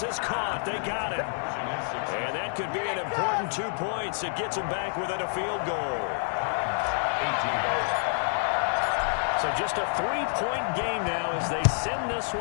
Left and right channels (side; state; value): right; silent; digital silence